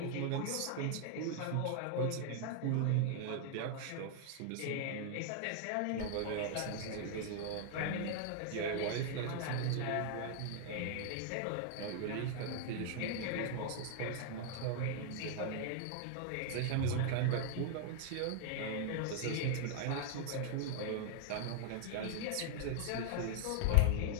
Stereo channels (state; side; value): different; both; correlation 0.00